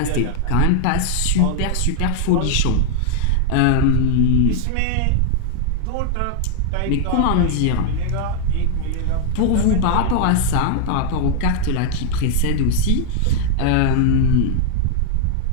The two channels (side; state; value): both; different; correlation 0.00